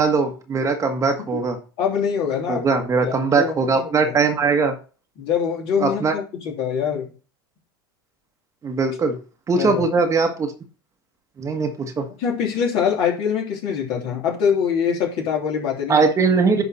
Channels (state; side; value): normal; both; correlation 0.46